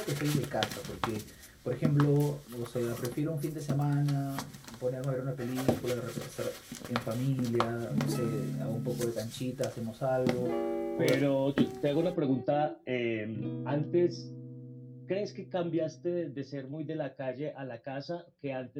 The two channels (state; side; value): identical; both; correlation 1.00